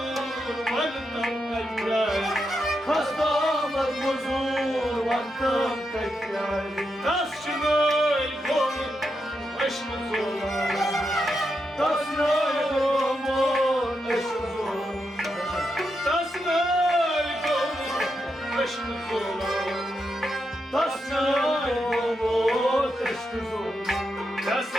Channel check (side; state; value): both; normal; correlation 0.85